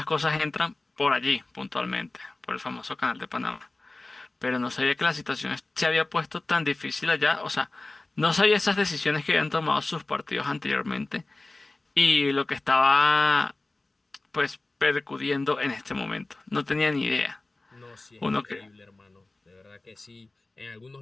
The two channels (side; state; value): right; quieter; 3.0 dB